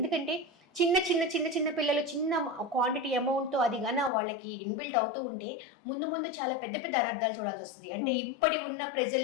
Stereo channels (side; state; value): right; drops out; at 4.1 s